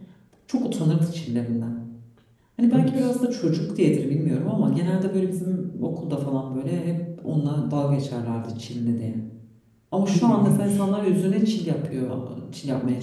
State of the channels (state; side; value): identical; both; correlation 1.00